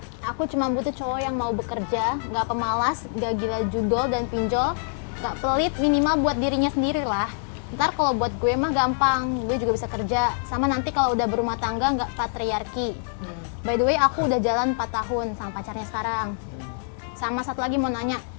Aku cuma butuh cowok yang mau bekerja, nggak pemalas, nggak gila judol dan pinjol, nggak pelit, minimal buat dirinya sendiri lah. Ntar kalau buat gue mah gampang, gue juga bisa kerja. Sama nanti kalau udah berumah tangga nggak patriarki. By the way, aku udah jalan 4 tahun sama pacarnya sekarang. Sama satu lagi mau nanya,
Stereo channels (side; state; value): right; silent; 58 dB below the other